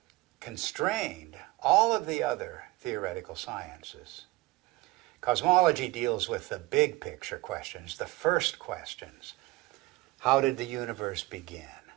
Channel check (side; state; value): left; quieter; 20.0 dB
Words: constrained all of the other theoretical sciences. Cosmology deals with the big picture questions, the first questions. How did the universe begin?